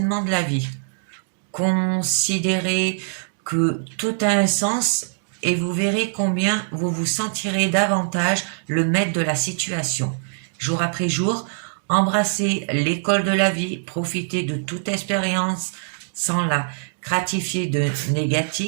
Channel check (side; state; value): left; silent; digital silence